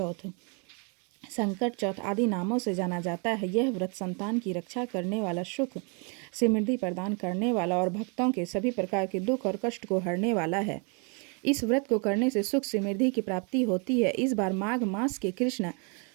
संकट चौथ आदि नामों से जाना जाता है। यह व्रत संतान की रक्षा करने वाला, सुख समृद्धि प्रदान करने वाला और भक्तों के सभी प्रकार के दुख और कष्ट को हरने वाला है। इस व्रत को करने से सुख समृद्धि की प्राप्ति होती है। इस बार माघ मास के कृष्ण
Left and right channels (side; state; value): left; quieter; 35.8 dB